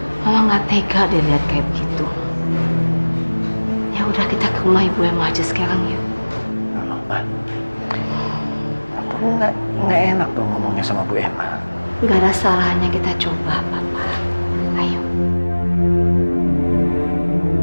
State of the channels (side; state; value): both; inverted; correlation -1.00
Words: Mama nggak tega dia lihat kayak begitu. Ya udah, kita ke rumah Ibu Emma aja sekarang ya. Ma, kamu nggak enak dong ngomongnya sama Bu Emma. Nggak ada salahnya kita coba, Papa. Ayo.